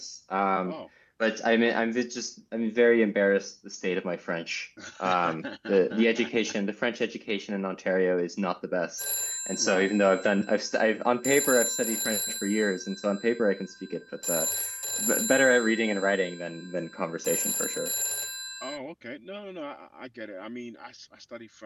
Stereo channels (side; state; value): both; identical; correlation 1.00